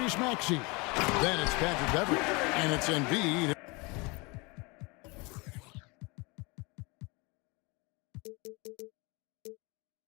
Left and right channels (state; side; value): quieter; right; 27.5 dB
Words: Maxey. Then it's Patrick Beverly. And it's Embiid.